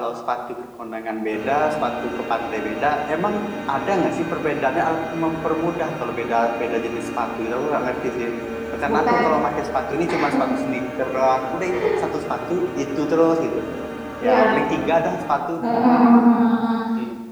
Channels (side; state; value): both; identical; correlation 1.00